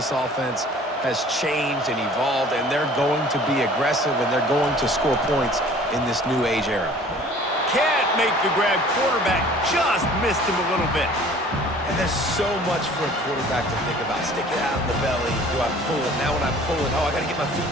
offense has changed and evolved, and they're going to be aggressive, and they're going to score points in this new age era. Can't make the grab. Quarterback just missed him a little bit. And there's so much for a quarterback to think about. Stick it out in the belly. Do I pull it? Now when I pull it, oh, I got to get my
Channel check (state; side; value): normal; both; correlation 0.50